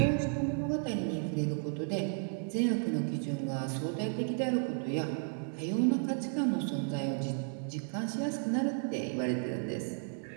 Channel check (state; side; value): silent; left; 55 dB below the other